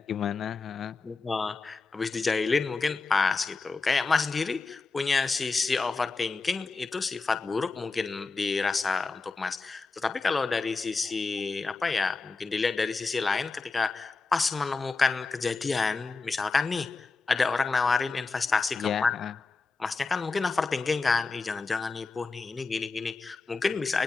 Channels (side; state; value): right; quieter; 4.1 dB